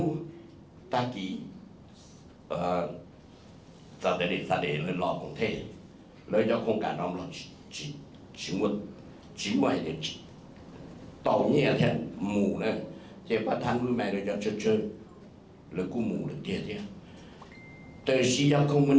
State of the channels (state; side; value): identical; both; correlation 1.00